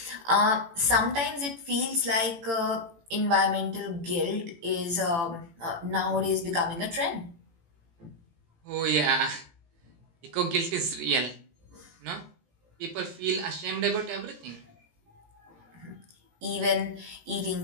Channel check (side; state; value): left; late; 18 ms